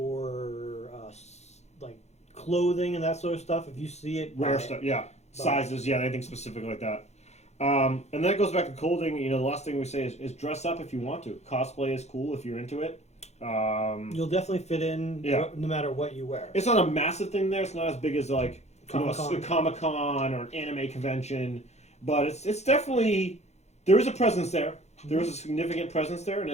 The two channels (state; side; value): late; right; 0.32 ms